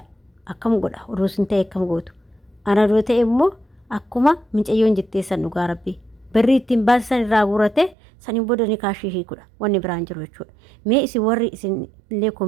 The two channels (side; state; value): left; drops out; at 8.0 s